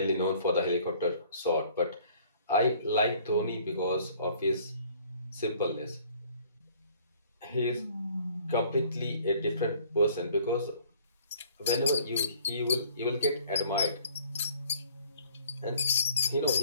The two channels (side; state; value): both; inverted; correlation -0.56